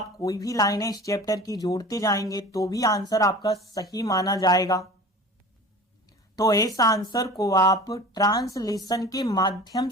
कोई भी लाइनें इस चैप्टर की जोड़ते जाएंगे तो भी आंसर आपका सही माना जाएगा। तो इस आंसर को आप ट्रांसलेशन के माध्यम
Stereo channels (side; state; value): both; normal; correlation 0.39